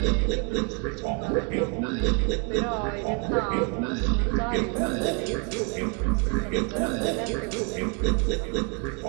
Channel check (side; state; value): left; quieter; 36.5 dB